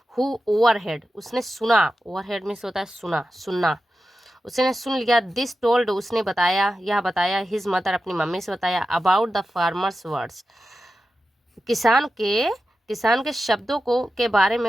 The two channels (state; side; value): normal; both; correlation 0.92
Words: हु ओवरहेड, उसने सुना, ओवरहेड मीन्स होता है सुनना, उसने सुन लिया, दिस टोल्ड, उसने बताया, यह बताया, हिज मदर, अपनी मम्मी से बताया, अबाउट द फार्मर्स वर्ड्स, किसान के शब्दों को के बारे